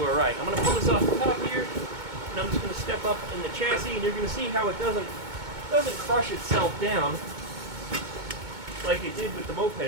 all right. I'm going to pull this off the top here, and I'm just going to step up in the chassis, and you're going to see how it doesn't crush itself down like it did with the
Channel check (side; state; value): left; late; 2.2 ms